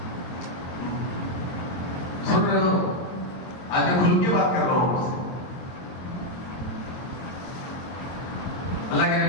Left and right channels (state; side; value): late; right; 22 ms